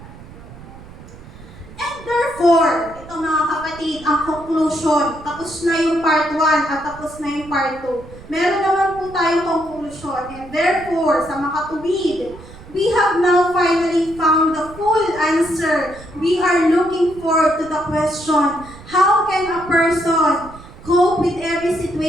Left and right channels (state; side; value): noise; right; rumble, 18 dB below the sound